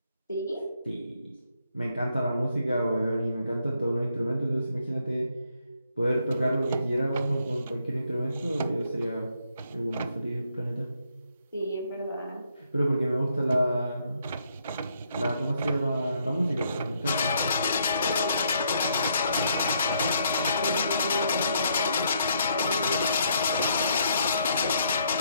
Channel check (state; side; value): inverted; both; correlation -0.72